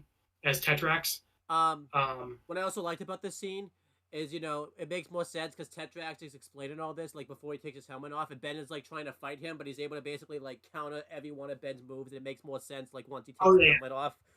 as Tetrax. Um, Um, what I also liked about this scene is, it makes more sense because Tetrax is explaining all this, like, before he takes his helmet off, and Ben is, like, trying to fight him, but he's able to basically, like, counter every one of Ben's moves, and it makes more sense, like, once he takes oh his yeah, helmet off.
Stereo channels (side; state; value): both; identical; correlation 1.00